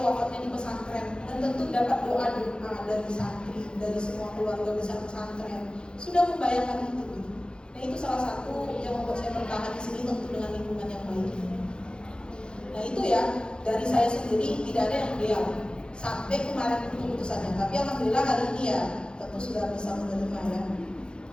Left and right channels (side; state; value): right; late; 0.050 ms